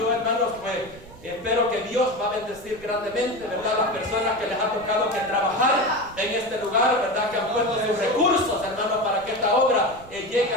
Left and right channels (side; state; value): right; noise; rumble, 20 dB below the sound